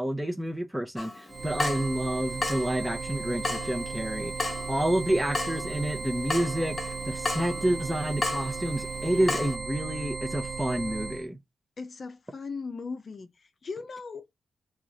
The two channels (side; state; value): both; normal; correlation 0.94